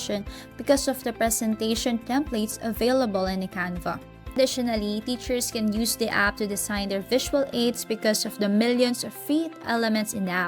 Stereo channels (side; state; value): both; identical; correlation 1.00